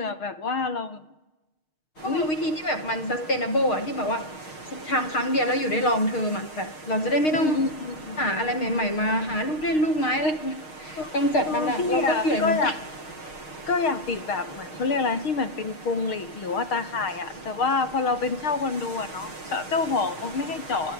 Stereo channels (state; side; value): late; right; 6.5 ms